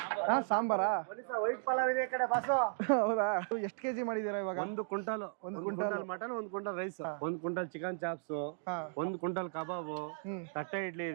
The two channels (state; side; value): silent; left; digital silence